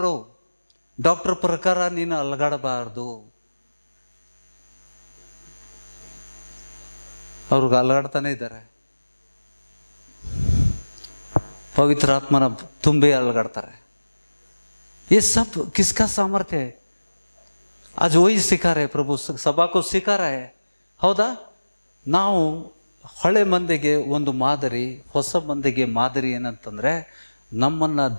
ಡಾಕ್ಟರ್ ಪ್ರಕಾರ ನೀನು ಅಲಗಾಡಬಾರ್ದು. ಅವ್ರಿಗೆ ಅಲಗಾಡ್ತಾನೆ ಇದ್ದಾರೆ. पवित्र आत्मा ತುಂಬಿ ಅಲಗಾಡ್ತಾರೆ. ये सब किसका सामर्थ्य है? आज वही सिखा रहे प्रभु, सभा को सिखा रहा है. ಹೌದಾ? ನಾವು ಹಳೆ ಮಂದಿಗೆ ಒಂದು ಮಾದರಿ, ಹೊಸ ಮಂದಿಗೆ ಮಾದರಿ ಏನಂತಂದ್ರೆ, ನಮ್ಮನ್ನ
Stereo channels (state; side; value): inverted; both; correlation -1.00